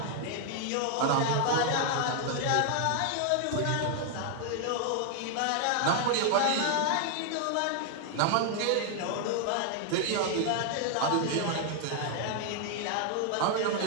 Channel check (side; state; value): both; different; correlation 0.00